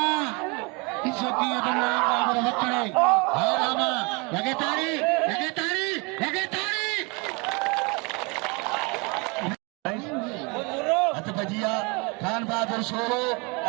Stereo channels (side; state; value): left; quieter; 29.8 dB